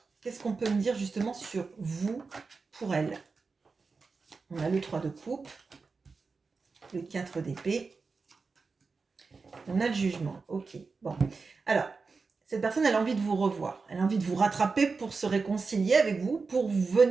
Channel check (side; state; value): left; quieter; 4.5 dB